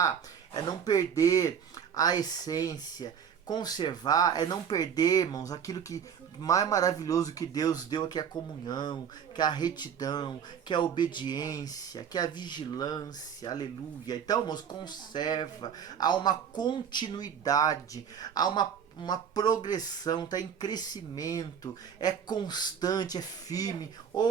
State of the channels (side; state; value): left; quieter; 7.8 dB